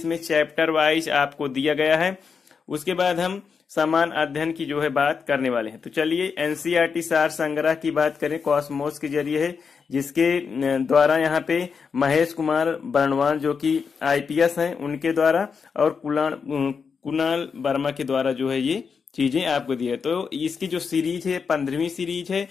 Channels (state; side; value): quieter; right; 5.8 dB